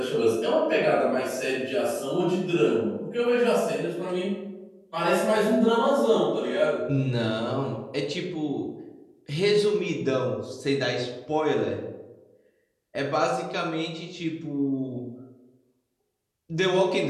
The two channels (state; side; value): identical; both; correlation 1.00